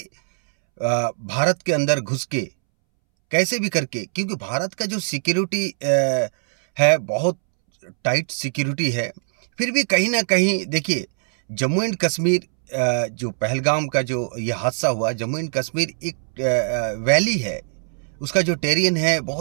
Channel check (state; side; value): silent; left; 64 dB below the other